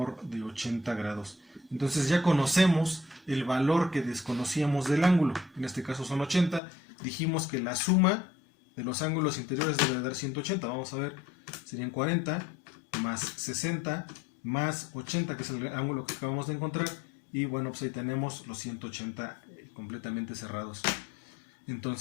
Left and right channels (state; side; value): drops out; right; at 6.6 s